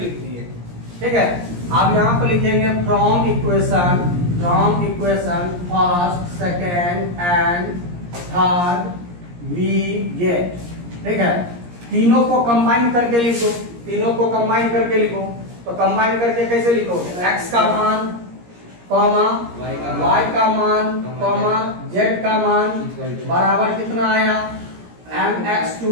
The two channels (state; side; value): late; left; 17 ms